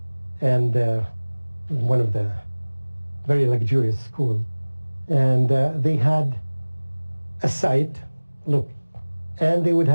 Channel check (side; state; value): both; inverted; correlation -1.00